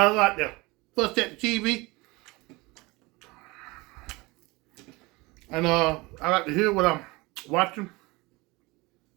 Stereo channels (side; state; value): left; quieter; 23.6 dB